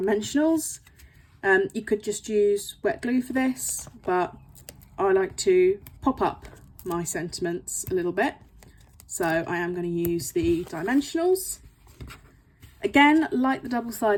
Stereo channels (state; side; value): identical; both; correlation 1.00